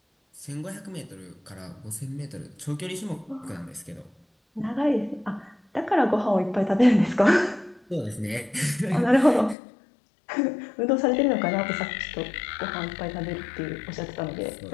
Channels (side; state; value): right; drops out; at 9.6 s